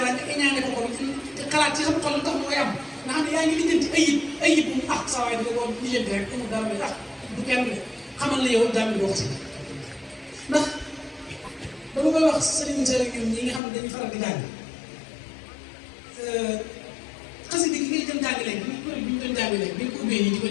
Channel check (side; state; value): right; drops out; at 13.6 s